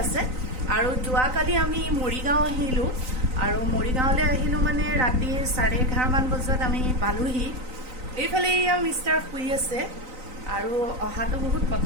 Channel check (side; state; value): left; late; 3.9 ms